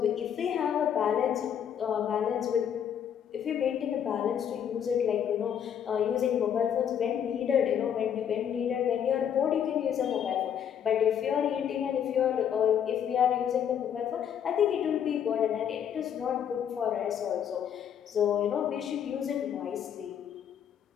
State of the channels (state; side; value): quieter; right; 8.7 dB